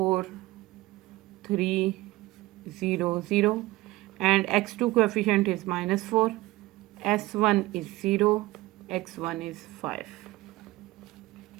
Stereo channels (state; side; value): quieter; left; 18.9 dB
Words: 3, 0, 0. And x2 coefficient is -4, s1 is 0, x1 is 5.